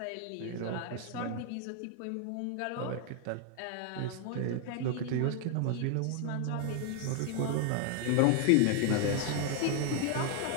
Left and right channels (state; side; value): different; both; correlation 0.00